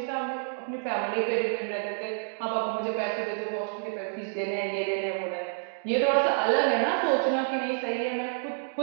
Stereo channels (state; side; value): silent; left; digital silence